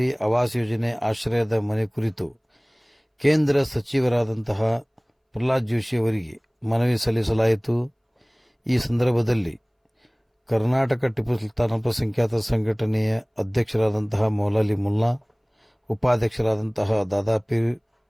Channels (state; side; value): identical; both; correlation 1.00